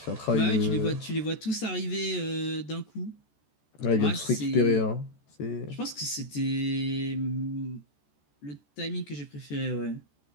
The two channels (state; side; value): late; right; 14 ms